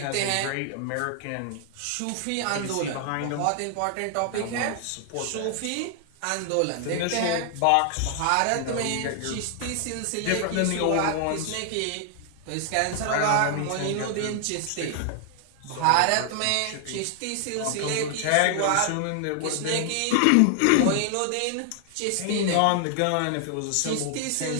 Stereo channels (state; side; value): different; both; correlation 0.00